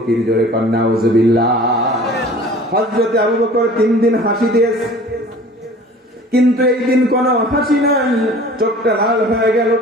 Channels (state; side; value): normal; both; correlation 0.46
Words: জোরে কর নাউযুবিল্লাহ। হযরতে আবু বকর 3 দিন হাসি দিয়েছে, কিন্তু এই দিন কোন হাসি নাই। চোখটা লাল হয়ে গেল।